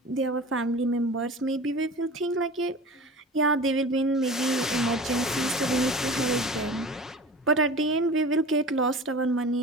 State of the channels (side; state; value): both; normal; correlation 0.36